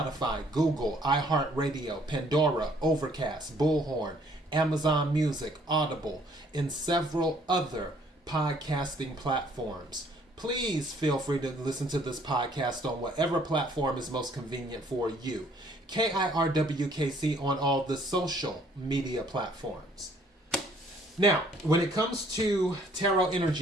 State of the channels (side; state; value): both; normal; correlation 0.62